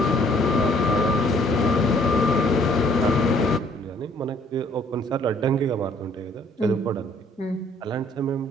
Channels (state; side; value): normal; both; correlation 0.61